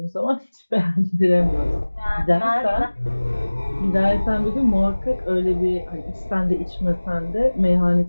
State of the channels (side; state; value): both; inverted; correlation -1.00